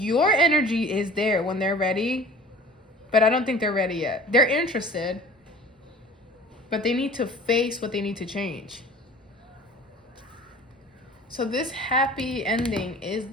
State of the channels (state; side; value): normal; both; correlation 0.44